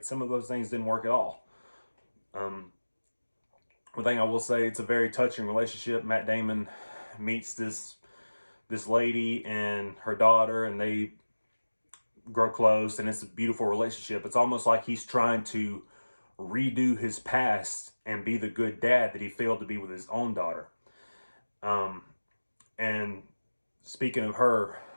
Some of those things didn't work at all. One thing I will say, it's a very touching relationship. Matt Damon meets this lady and her daughter, and they grow close, and it's a beautiful relationship. It's almost like he's trying to redo his past and be the good dad that he failed to be with his own daughter. And speaking of her,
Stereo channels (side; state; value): both; inverted; correlation -1.00